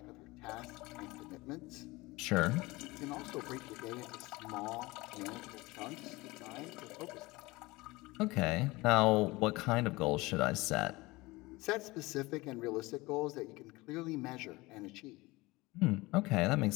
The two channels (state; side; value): quieter; right; 21.7 dB